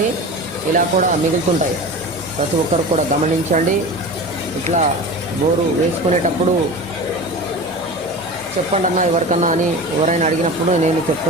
ఇలా కూడా మిగులుతుంటాయి. ప్రతి ఒక్కరు కూడా గమనించండి. ఇట్లా బోరు వేసుకునేటప్పుడు చెప్పండి అన్న ఎవరికన్నా అని ఎవరైనా అడిగినప్పుడు నేను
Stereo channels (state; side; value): normal; both; correlation 0.32